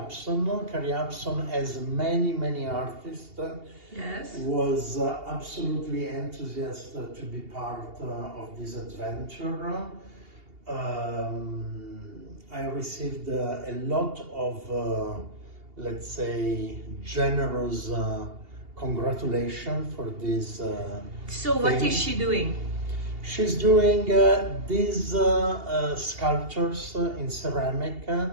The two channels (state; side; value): late; left; 2.8 ms